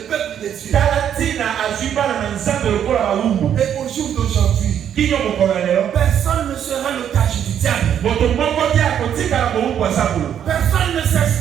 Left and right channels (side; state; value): left; quieter; 9.4 dB